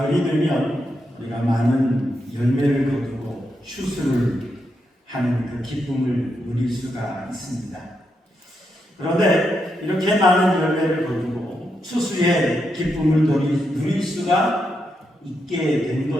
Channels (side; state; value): both; normal; correlation 0.83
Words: 되면 우리가 많은 열매를 거두고 추수를 하는 그 기쁨을 누릴 수가 있습니다. 그런데 이렇게 많은 열매를 거두고 추수의 기쁨을 누릴 수가 있게 된